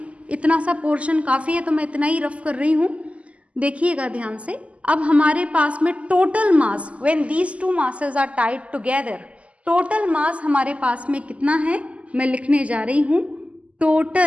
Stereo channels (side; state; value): left; late; 0.063 ms